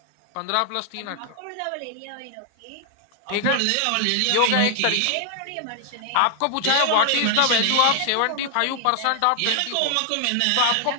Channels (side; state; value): both; different; correlation 0.00